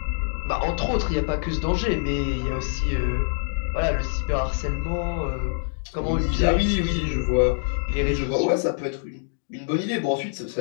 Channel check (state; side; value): silent; right; digital silence